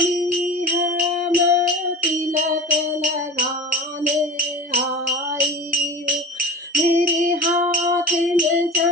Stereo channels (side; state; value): both; normal; correlation 0.33